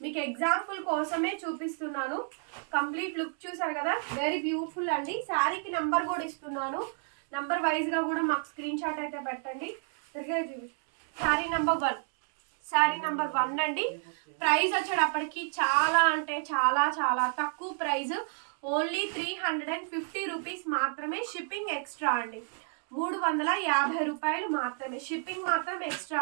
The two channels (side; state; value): left; silent; 57 dB below the other